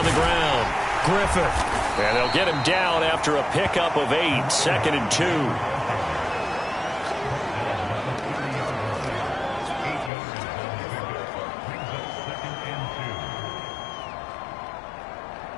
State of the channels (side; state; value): right; drops out; at 10.1 s